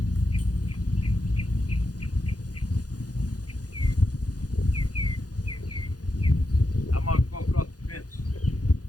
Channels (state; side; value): late; right; 0.68 ms